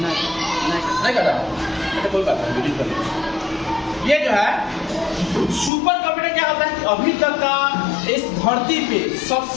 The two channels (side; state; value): right; drops out; at 5.7 s